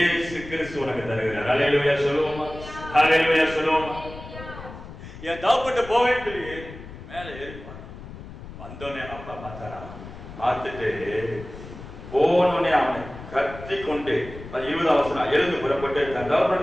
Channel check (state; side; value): noise; left; rumble, 14 dB below the sound